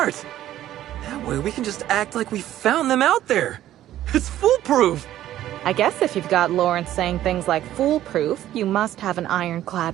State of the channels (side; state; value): left; quieter; 13.0 dB